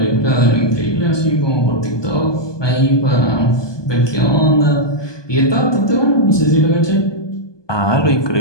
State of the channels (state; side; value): late; right; 1.2 ms